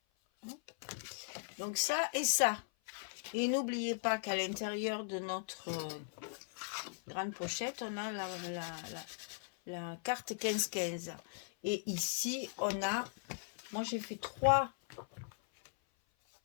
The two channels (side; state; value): right; silent; 52 dB below the other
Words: Donc, ça et ça. Et n'oubliez pas qu'à l'intérieur de notre grande pochette, on a la carte 15-15. Et ici, on a... Moi, j'ai fait trois